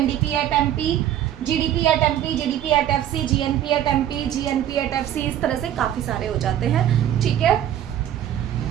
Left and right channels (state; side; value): quieter; left; 11.2 dB